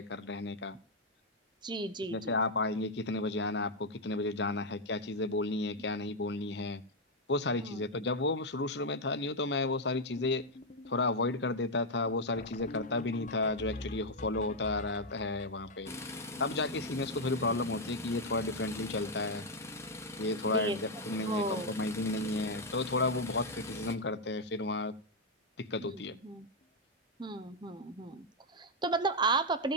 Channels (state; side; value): normal; both; correlation 0.02